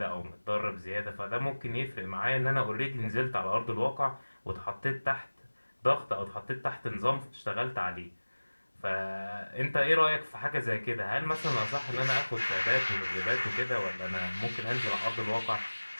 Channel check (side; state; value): both; inverted; correlation -1.00